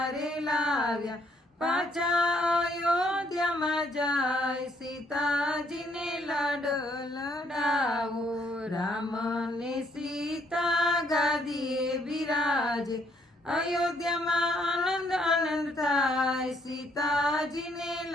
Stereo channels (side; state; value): both; normal; correlation 0.69